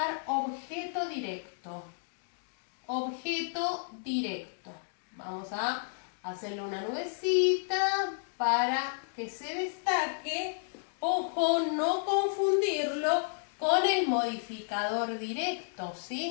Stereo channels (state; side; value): silent; right; digital silence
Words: objeto directo. Objeto directo. Vamos a hacerle una nubecita para que se destaque. Ojo, no confundirlo con el modificador directo,